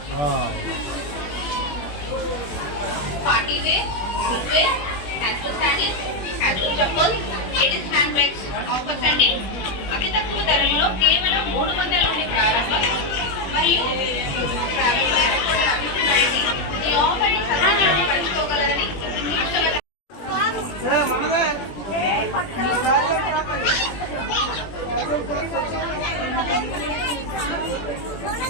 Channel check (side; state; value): right; late; 21 ms